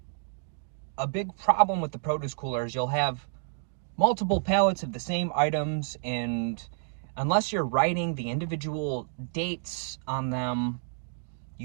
a big problem with the produce cooler is you'll have multiple pallets of the same items, and unless you're writing the individual dates on them,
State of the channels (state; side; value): silent; left; digital silence